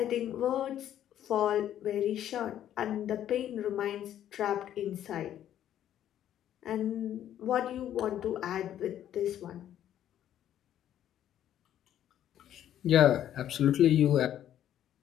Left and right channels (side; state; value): right; quieter; 11.1 dB